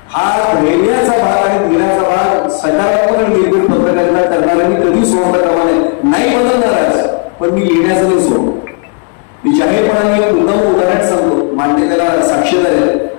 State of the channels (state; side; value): quieter; right; 38.9 dB